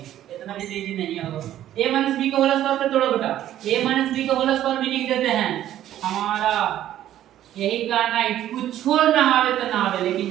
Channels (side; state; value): left; quieter; 12.2 dB